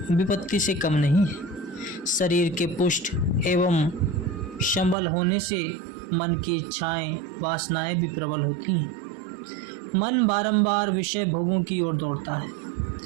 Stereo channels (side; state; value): left; drops out; at 5.0 s